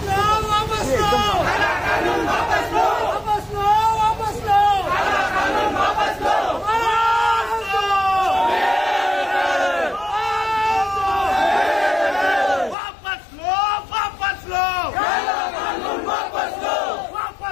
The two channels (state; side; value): drops out; right; at 12.8 s